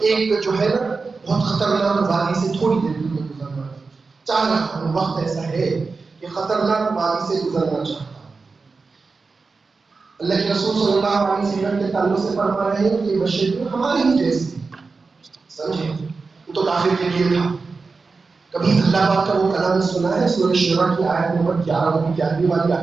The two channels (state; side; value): quieter; left; 4.3 dB